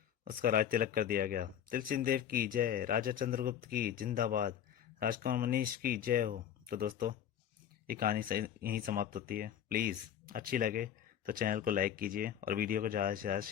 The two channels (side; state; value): right; quieter; 9.6 dB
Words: उसका राज तिलक कर दिया गया। तिलसिंह देव की जय, राजा चंद्रगुप्त की जिंदाबाद, राजकुमार मनीष की जय हो। तो दोस्तों, ये कहानी यहीं समाप्त होती है। प्लीज़ अच्छी लगे तो चैनल को लाइक कीजिए और वीडियो को ज़्यादा से ज़्यादा